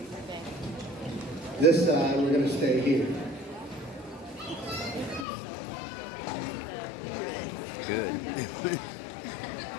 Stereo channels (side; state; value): right; drops out; at 5.2 s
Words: This side, we're going to stay here. Good.